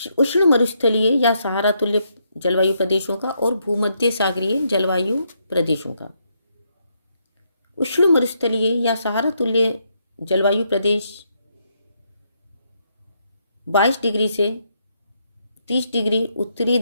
उष्ण मरुस्थलीय या सहारा तुल्य जलवायु प्रदेशों का और भूमध्य सागरीय जलवायु प्रदेशों का। उष्ण मरुस्थलीय या सहारा तुल्य जलवायु प्रदेश 22 डिग्री से 30 डिग्री उत्तरी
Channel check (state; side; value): inverted; both; correlation -0.77